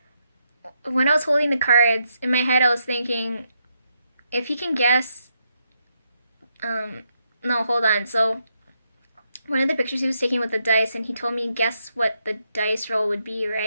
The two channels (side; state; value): both; inverted; correlation -0.80